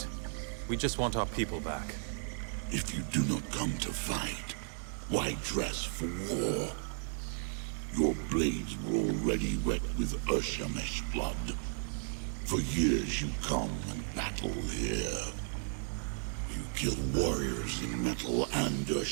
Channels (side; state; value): left; silent; 55 dB below the other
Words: We just want our people back. If you do not come to fight, why dress for war? Your blades were already wet with Urshamesh blood. For years you come and battle here. You kill warriors in metal and